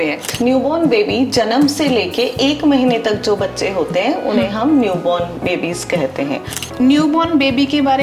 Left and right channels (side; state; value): both; identical; correlation 1.00